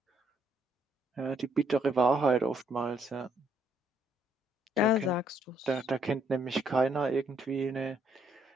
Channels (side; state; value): both; normal; correlation 0.70